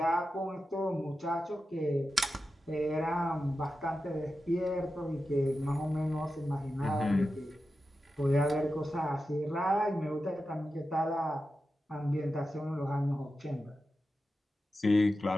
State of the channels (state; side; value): normal; both; correlation 0.91